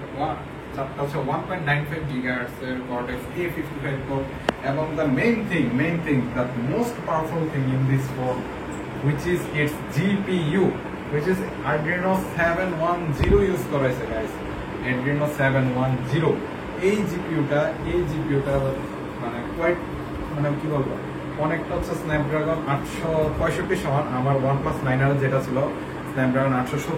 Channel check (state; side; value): identical; both; correlation 1.00